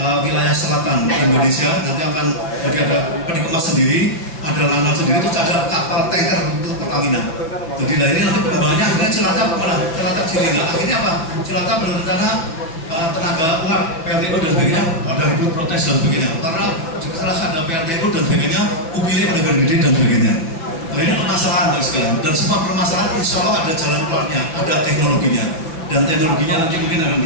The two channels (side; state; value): right; late; 6.1 ms